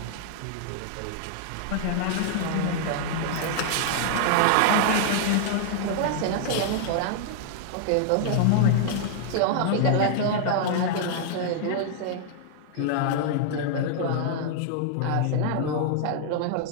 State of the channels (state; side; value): different; both; correlation -0.01